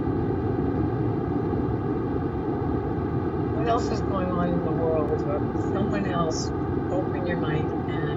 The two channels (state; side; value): identical; both; correlation 1.00